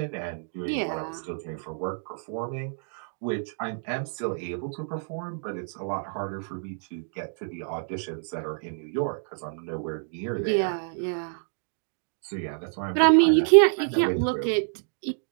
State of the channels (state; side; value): silent; left; digital silence